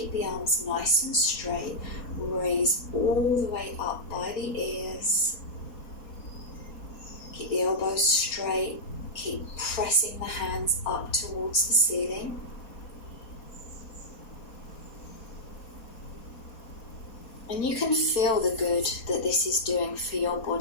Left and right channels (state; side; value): late; right; 4.3 ms